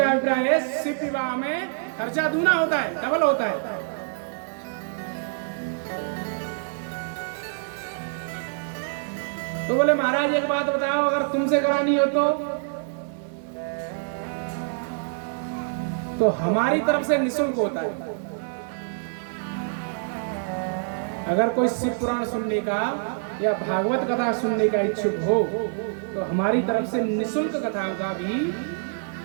अभिप्राय है शिव विवाह में खर्चा दूना होता है, डबल होता है। तो बोले महाराज एक बात बताओ, अगर तुमसे करानी हो तो हमारी तरफ से निःशुल्क होता है। अगर कोई शिव पुराण सुनने का या भागवत कथा सुनने का इच्छुक हो तो हमारी तरफ से निःशुल्क कथाओं का भी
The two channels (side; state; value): left; silent; digital silence